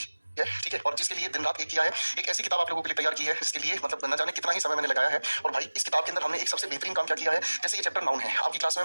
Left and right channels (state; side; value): inverted; both; correlation -1.00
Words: ठीक है? और जिसके लिए दिन रात एक किया है, एक ऐसी किताब आप लोगों के लिए तैयार की है जिसके लिए मतलब न जाने कितना ही समय मैंने लगाया है। और भाई इस किताब के अंदर हमने एक सबसे बेहतरीन काम क्या किया है, जैसे ये चैप्टर नाउन है, आपकी क्लास में